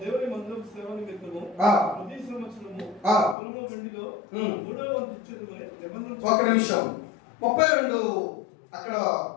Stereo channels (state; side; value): drops out; right; at 3.4 s